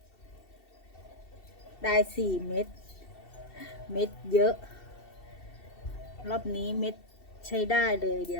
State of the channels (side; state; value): right; late; 2.7 ms